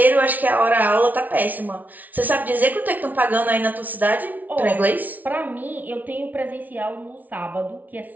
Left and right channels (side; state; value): left; late; 0.078 ms